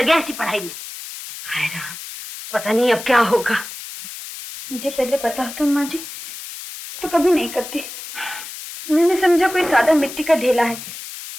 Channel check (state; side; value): noise; left; hiss, 11 dB below the sound